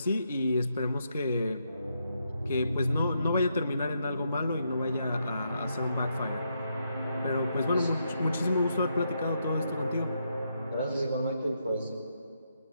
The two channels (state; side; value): inverted; both; correlation -0.79